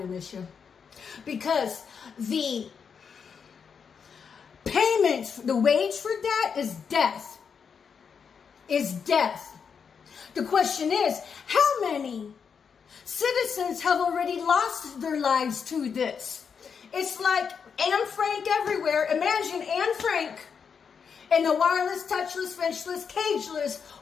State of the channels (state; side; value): quieter; right; 6.4 dB